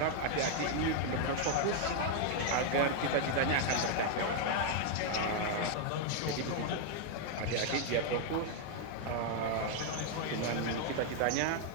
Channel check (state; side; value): different; both; correlation 0.00